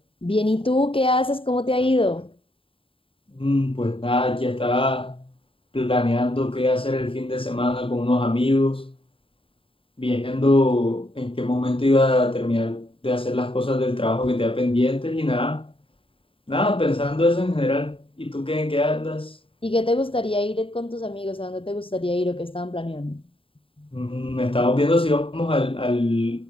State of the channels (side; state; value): right; late; 0.26 ms